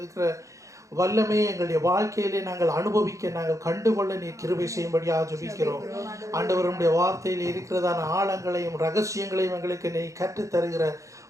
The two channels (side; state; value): left; late; 0.15 ms